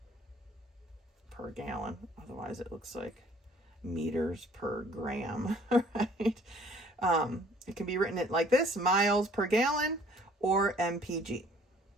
per gallon. Otherwise it looks like meters per gram, right? It can be written like this, miles per gallon or MPG,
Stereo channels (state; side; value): normal; both; correlation 0.56